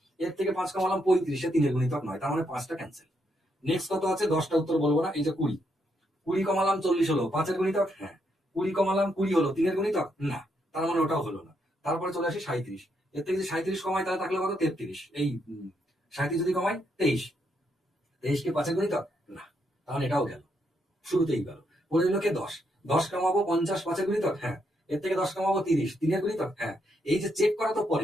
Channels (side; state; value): both; normal; correlation 0.78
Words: এর থেকে 5 কমালাম 35, সে 3 এর গুণিতক নয়, তার মানে 5টা ক্যান্সেল। নেক্সট কত আছে? 10টা উত্তর বলবো না। এই যে 20 কমালাম 40 হলো 5 এর গুণিতক, হ্যাঁ। 20 কমালাম 20 হলো 3 এর গুণিতক, না, তার মানে ওটাও হলো না। তারপরে চলে আসি 37, এর থেকে যদি 37 কমাই তাহলে থাকলে কত? 33। এই 37 যদি কমাই 23, 23 কি 5 এর গুণিতক? না, তাহলে এটাও গেল, শুরুতেই গেল। পড়ে দিল কে? 10। 10 কমাবো 50, 5 এর গুণিতক, হ্যাঁ। এর থেকে 10 কমাবো 30, 3 এর গুণিতক, হ্যাঁ। এই যে চেক করা তো